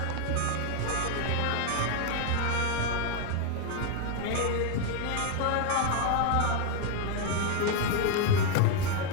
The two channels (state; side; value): different; both; correlation 0.01